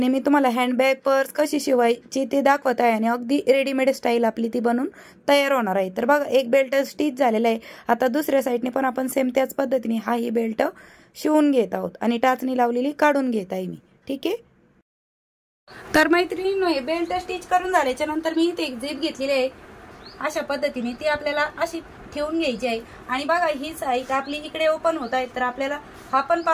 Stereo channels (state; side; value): identical; both; correlation 1.00